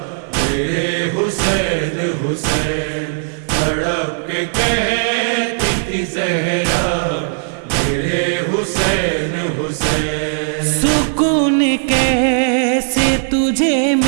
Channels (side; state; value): left; silent; 57 dB below the other